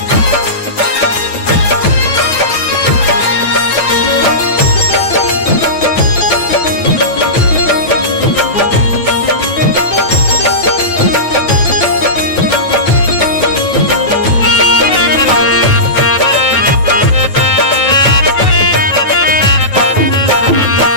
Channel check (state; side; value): late; right; 9.2 ms